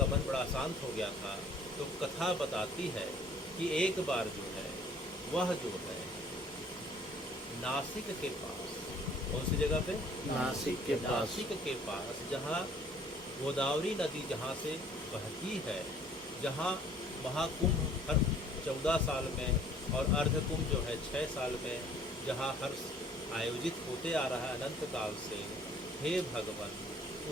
मन बड़ा अशांत हो गया था। तो कथा बताती है कि एक बार जो है वह जो है नासिक के पास, कौन सी जगह पे? नासिक के पास जहाँ गोदावरी नदी जहाँ से बहती है, जहाँ महाकुंभ हर 14 साल में और अर्धकुंभ जो है 6 साल में जहाँ हर आयोजित होते आ रहा है अनंत काल से, हे भगवान,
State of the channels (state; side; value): normal; both; correlation 0.55